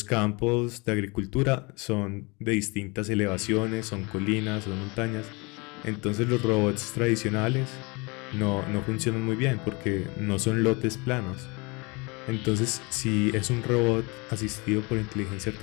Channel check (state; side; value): quieter; right; 27.8 dB